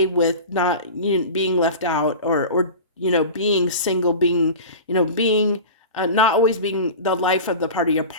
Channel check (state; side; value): inverted; both; correlation -0.32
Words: with not being left out, or being single, being, being not always being the life of the party, a